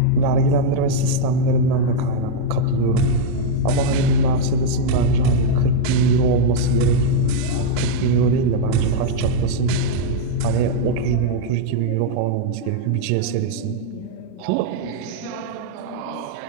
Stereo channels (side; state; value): both; different; correlation -0.01